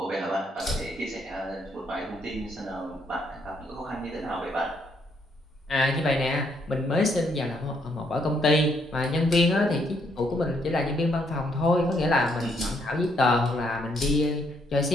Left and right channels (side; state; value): both; normal; correlation 0.72